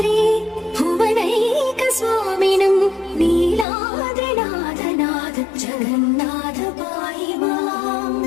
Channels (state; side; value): drops out; right; at 3.7 s